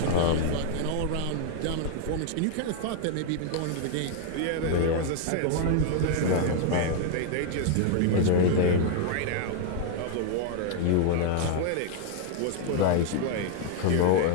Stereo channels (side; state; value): both; different; correlation 0.00